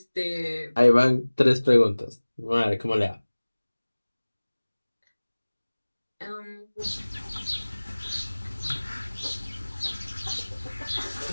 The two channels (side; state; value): both; inverted; correlation -1.00